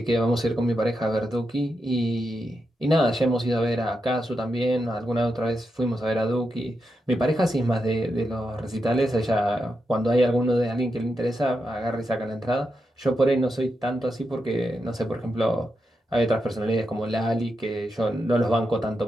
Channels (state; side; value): normal; both; correlation 0.86